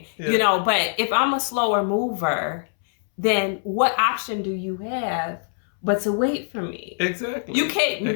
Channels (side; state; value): right; silent; 63 dB below the other